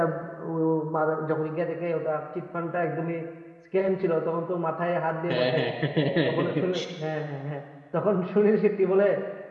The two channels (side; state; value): both; identical; correlation 1.00